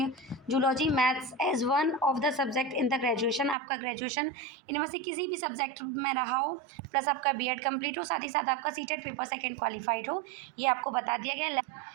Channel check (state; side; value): drops out; left; at 3.6 s